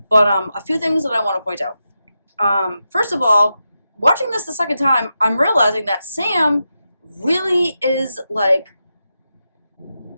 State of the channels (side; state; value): both; inverted; correlation -0.88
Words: But a few things that I want to point out. First of all, watching this the second time, I'm realizing that Sam really is like,